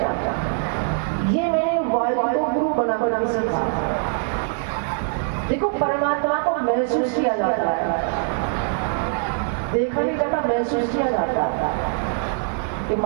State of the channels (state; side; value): silent; left; digital silence